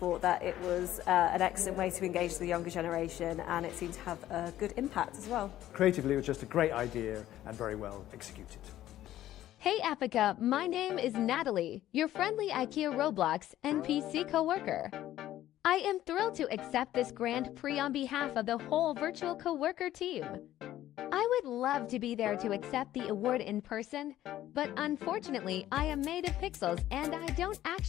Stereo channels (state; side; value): quieter; right; 13.3 dB